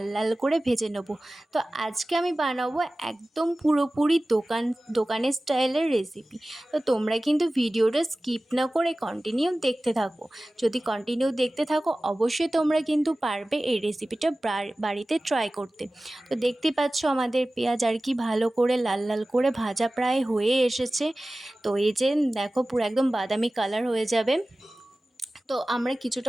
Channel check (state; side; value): normal; both; correlation 0.97